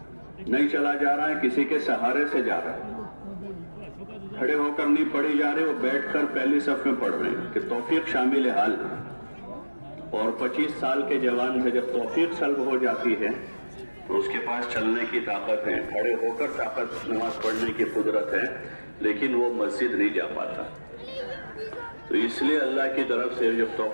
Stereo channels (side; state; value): both; inverted; correlation -1.00